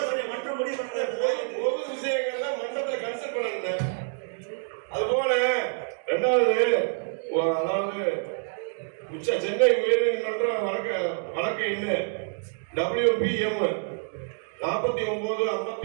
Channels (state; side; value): silent; left; 60 dB below the other